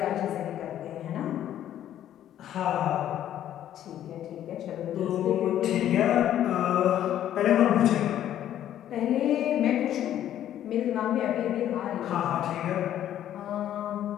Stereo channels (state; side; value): quieter; right; 11.4 dB